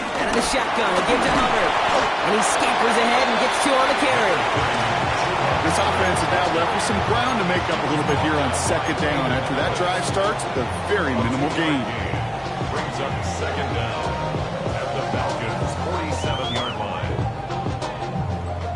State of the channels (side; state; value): both; identical; correlation 1.00